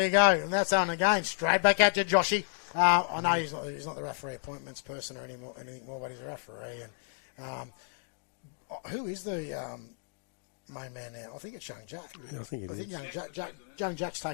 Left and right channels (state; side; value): silent; right; digital silence